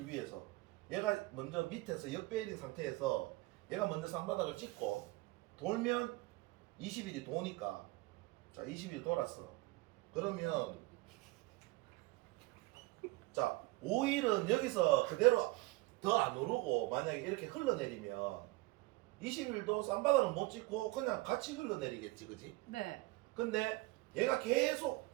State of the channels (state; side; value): quieter; left; 21.3 dB